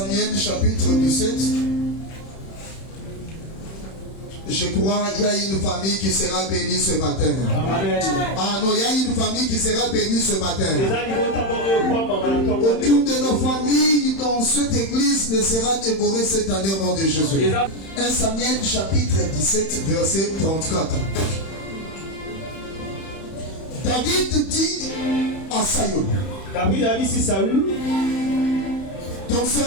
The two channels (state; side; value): late; right; 31 ms